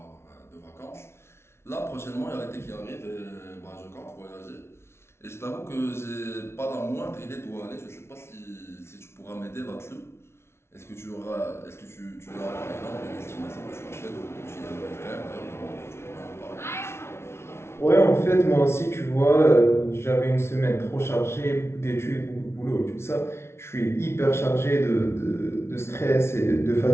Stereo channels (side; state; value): right; late; 0.12 ms